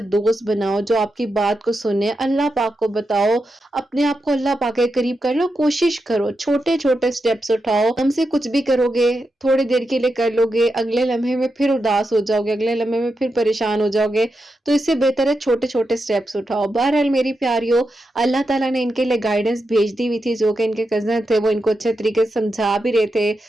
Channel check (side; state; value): both; normal; correlation 0.87